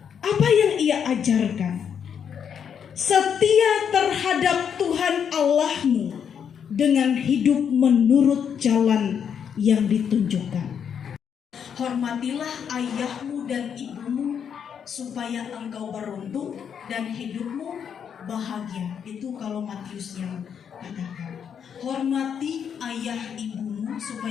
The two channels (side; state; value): right; quieter; 7.8 dB